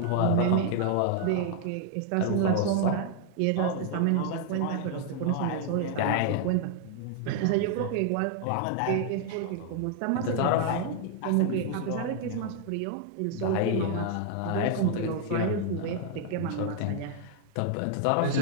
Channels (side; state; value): both; different; correlation 0.00